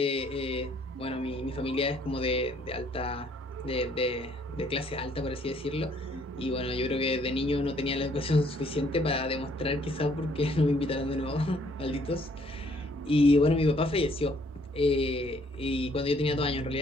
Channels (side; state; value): both; normal; correlation 0.64